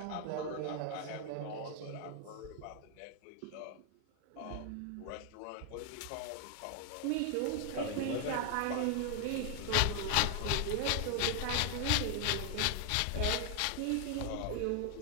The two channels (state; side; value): different; both; correlation 0.00